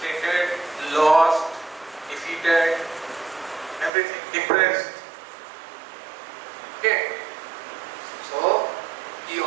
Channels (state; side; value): drops out; left; at 3.9 s